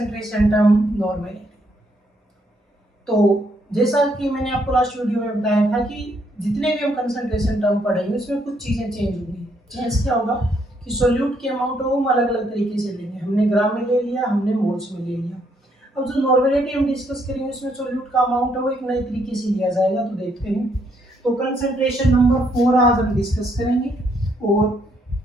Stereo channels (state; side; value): normal; both; correlation 0.72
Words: टर्म नॉर्मेलिटी। तो जैसा कि मैंने आपको लास्ट वीडियो में बताया था कि जितने भी हम कंसंट्रेशन टर्म पढ़ेंगे उसमें कुछ चीज़ें चेंज होंगी। चेंज क्या होगा कि सोल्यूट के अमाउंट को हम अलग अलग तरीके से लेंगे। हमने ग्राम में ले लिया, हमने मोल्स में ले लिया। अब जो नॉर्मेलिटी हम डिस्कस करेंगे उसमें सोल्यूट का अमाउंट है वो एक नए तरीके से लिया जाएगा। तो देखते हैं। तो कंसंट्रेशन नंबर 4 आज हम डिस्कस करेंगे और